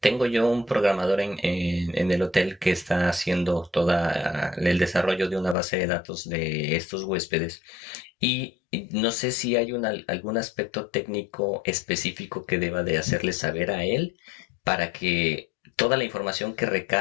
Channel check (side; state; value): right; drops out; at 5.6 s